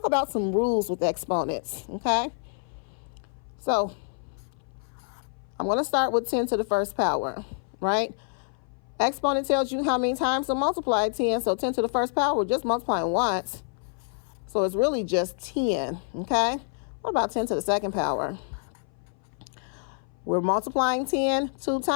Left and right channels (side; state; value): right; silent; 58 dB below the other